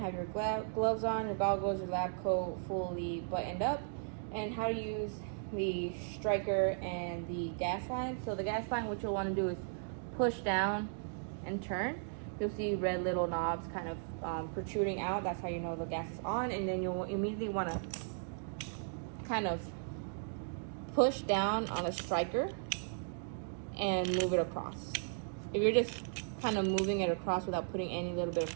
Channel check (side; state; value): left; silent; digital silence